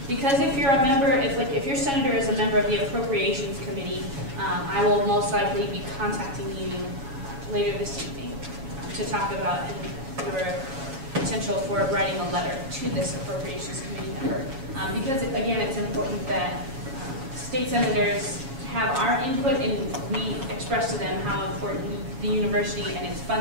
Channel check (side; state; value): left; late; 7.3 ms